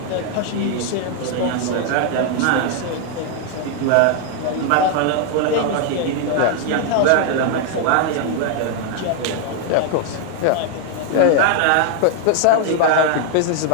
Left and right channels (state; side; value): different; both; correlation 0.00